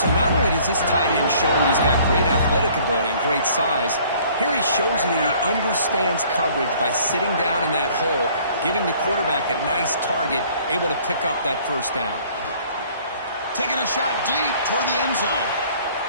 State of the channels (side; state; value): both; inverted; correlation -0.56